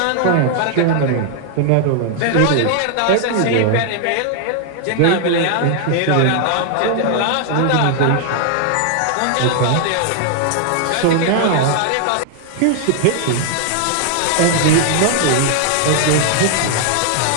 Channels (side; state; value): both; different; correlation 0.00